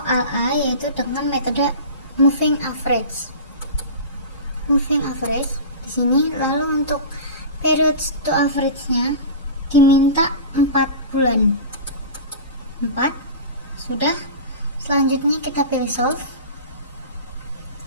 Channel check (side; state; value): both; inverted; correlation -0.31